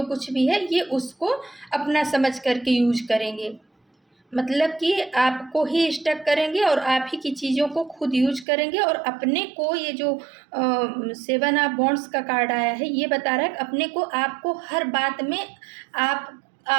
कुछ भी है, ये उसको अपना समझ करके यूज करेंगे। मतलब कि आपको ही स्टक करेंगे और आप ही की चीज़ों को खुद यूज करेंगे, और अपने को ये जो सेवन ऑफ बॉन्ड्स का कार्ड आया है ये बता रहा है कि अपने को, आपको हर बात में आप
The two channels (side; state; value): left; drops out; at 8.5 s